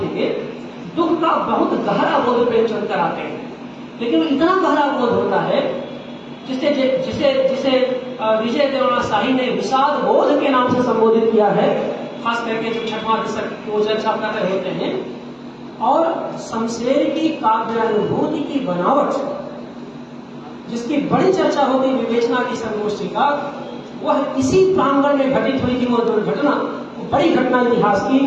दुख का बहुत गहरा बोध प्रेमचंद कराते हैं, लेकिन इतना गहरा बोध होता है जिसे विजय देवराना शाही ने विषाद बोध के नाम से संबोधित किया है, खास करके जो छठवां दशक को चर्चा कर रहे होते हैं। और शमशेर की काव्यानुभूति की बनावट, जिसकी बड़ी चर्चा होगी विवेचना की संगोष्ठी का, वह इसी प्रांगण में घटित हुई थी। वो दुर्घटना, बड़ी घटना इतिहास की,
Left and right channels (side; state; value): both; identical; correlation 1.00